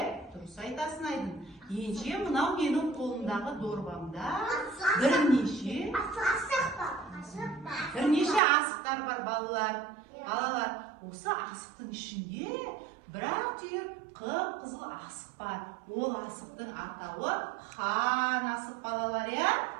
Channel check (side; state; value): left; drops out; at 8.4 s